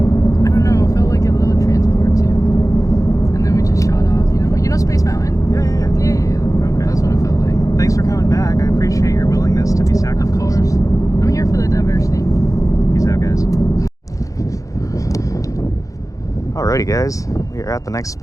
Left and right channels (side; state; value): right; late; 0.16 ms